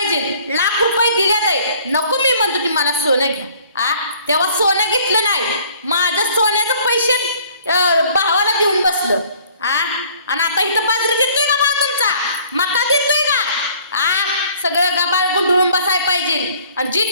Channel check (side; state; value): both; inverted; correlation -0.56